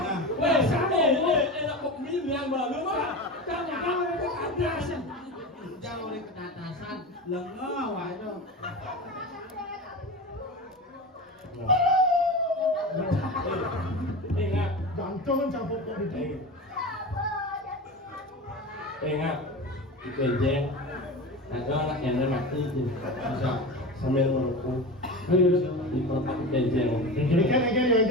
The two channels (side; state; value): both; normal; correlation 0.27